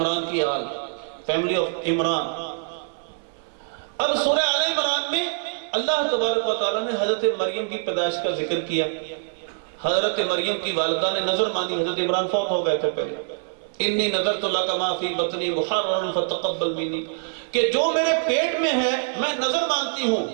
کی آل، فیملی آف عمران۔ اب سورہ آل عمران میں اللہ تبارک و تعالیٰ نے حضرت مریم کی پیدائش کا ذکر کیا۔ حضرت مریم کی والدہ نے نظر مانی، حضرت عمران فوت ہو گئے تھے پہلے، انی نذرت لک ما فی بطنی محررا فتقبل منی، کہ جو میرے پیٹ میں ہے میں نظر مانتی ہوں،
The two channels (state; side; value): silent; left; 62 dB below the other